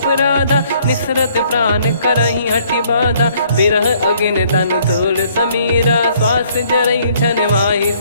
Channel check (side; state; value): both; inverted; correlation -0.63